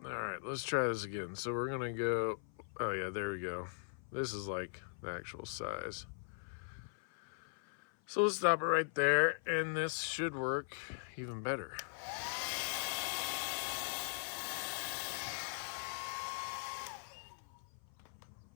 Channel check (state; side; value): silent; right; 51 dB below the other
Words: All right, let's try this again. So we're gonna go, oh yeah, there we go. This is like the actual size. So let's stop it right there, and this should work even better.